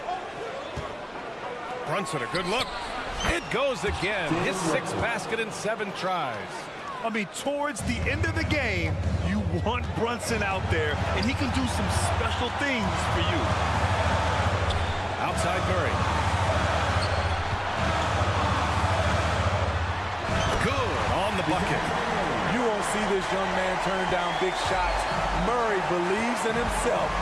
Brunson, a good look. It goes again. His 6th basket in 7 tries. I mean, towards the end of the game, you want Brunson out there, and he can do some special things for you. Outside Murray. Good on the bucket. You won't see this young man turn down big shots. Murray believes in himself,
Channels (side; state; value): both; identical; correlation 1.00